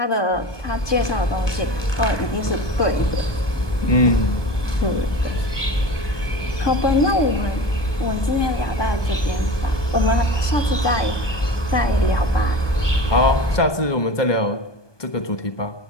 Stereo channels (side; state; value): right; late; 1.2 ms